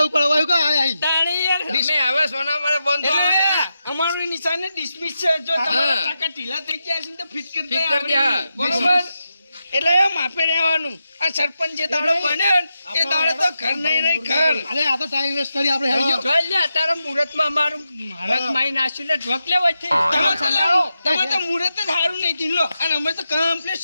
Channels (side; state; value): both; inverted; correlation -0.88